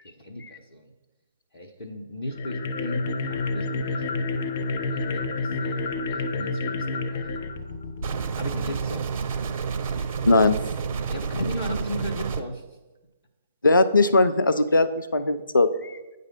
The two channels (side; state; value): both; inverted; correlation -0.73